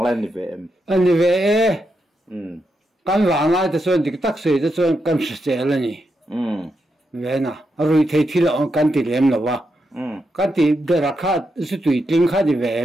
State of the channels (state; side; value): normal; both; correlation 0.84